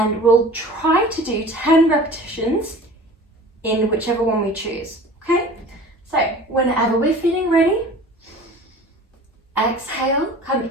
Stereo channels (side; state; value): both; normal; correlation 0.42